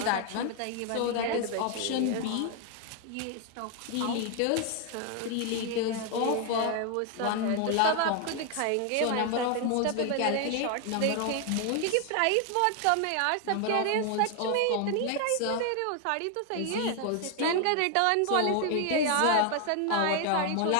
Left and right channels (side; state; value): both; different; correlation 0.00